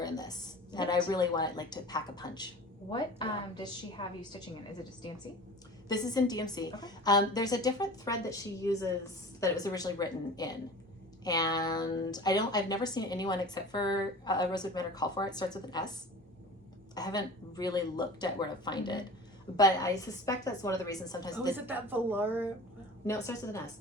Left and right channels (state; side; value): normal; both; correlation 0.38